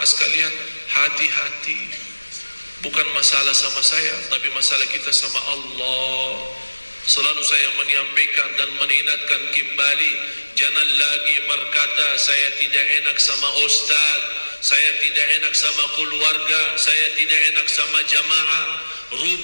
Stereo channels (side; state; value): both; inverted; correlation -1.00